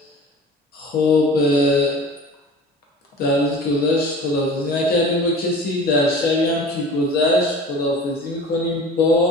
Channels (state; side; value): normal; both; correlation 0.40